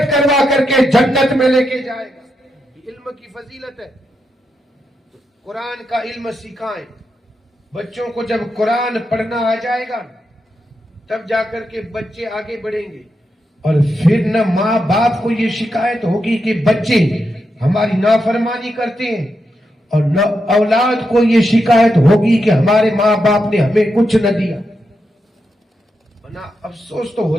کروا کر کے جنت میں لے کے جائے گا. علم کی فضیلت ہے. قرآن کا علم سکھائیں بچوں کو. جب قرآن پڑھنا آ جائے گا تب جا کر کے بچے آگے بڑھیں گے. اور پھر نہ ماں باپ کو یہ شکایت ہوگی کہ بچے ہماری نافرمانی کرتے ہیں، اور نہ اولاد کو یہ شکایت ہوگی کہ ہمارے ماں باپ نے ہمیں کچھ نہ دیا. ورنہ افسوس تو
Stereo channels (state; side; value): normal; both; correlation 0.85